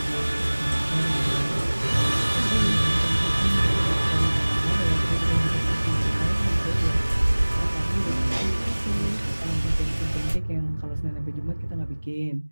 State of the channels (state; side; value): inverted; both; correlation -1.00